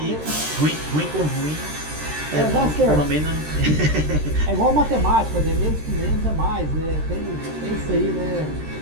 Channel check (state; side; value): late; left; 13 ms